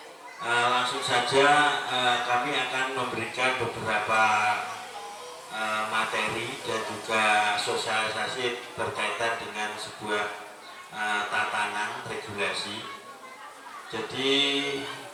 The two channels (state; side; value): identical; both; correlation 1.00